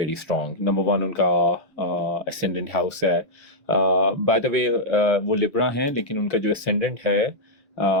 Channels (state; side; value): normal; both; correlation -0.07